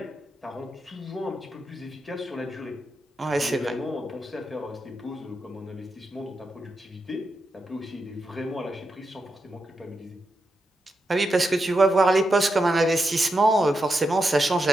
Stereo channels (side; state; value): both; normal; correlation 0.86